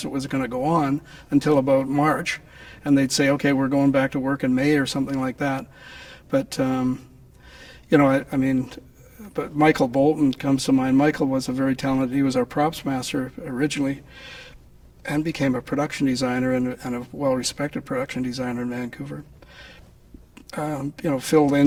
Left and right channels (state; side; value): identical; both; correlation 1.00